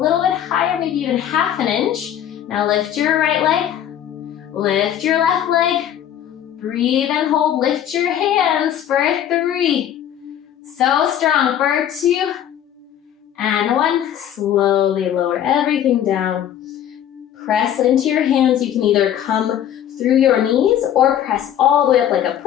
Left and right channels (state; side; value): quieter; right; 10.4 dB